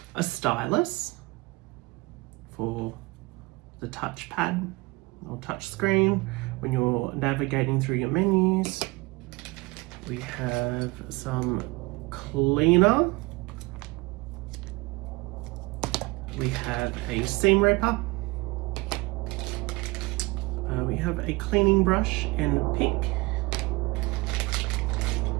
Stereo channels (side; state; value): left; quieter; 24.4 dB